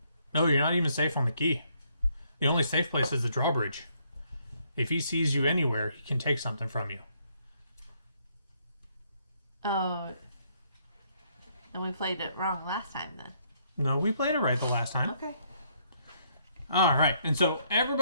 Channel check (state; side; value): inverted; both; correlation -0.70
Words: No, you're not even safe on the key. The only safe place is the drawbridge. If he sees you anywhere, he can take something from you. Oh. And we played it wrong last time then. No, we played it right the last time. Okay. All right, and so